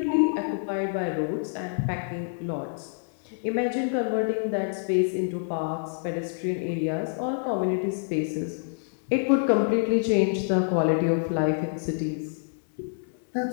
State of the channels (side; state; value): right; silent; digital silence